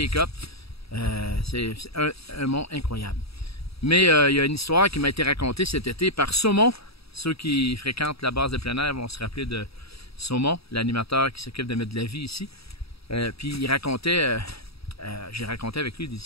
C'est un mont incroyable. Mais il y a une histoire qui m'a été racontée cet été par Saumon. Ceux qui fréquentent la base de plein air vont se rappeler de Saumon, l'animateur qui s'occupe de mettre de la vie ici. Puis il racontait, j'ai raconté avec lui des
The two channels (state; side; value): late; right; 0.77 ms